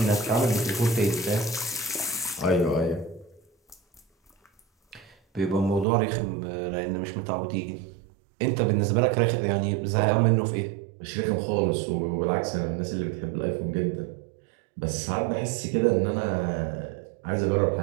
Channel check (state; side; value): drops out; left; at 5.9 s